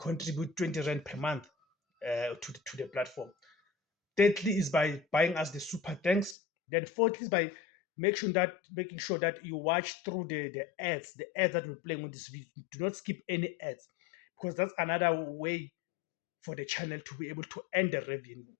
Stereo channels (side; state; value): right; drops out; at 6.4 s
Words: 20 Rand per month to the platform. Thirdly is by buying us the super thanks. Then fourthly is by making sure that you watch through the ads that we're playing on this video. Do not skip any ads, because that's another way for the channel to be able to earn the revenue.